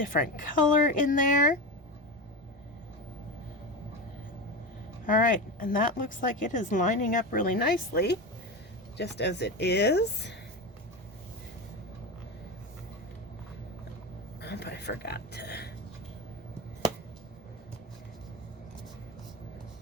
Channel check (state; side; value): normal; both; correlation 0.21